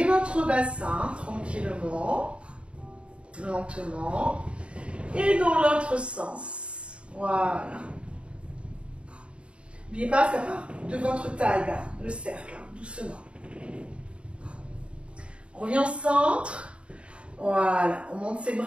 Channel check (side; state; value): left; late; 0.058 ms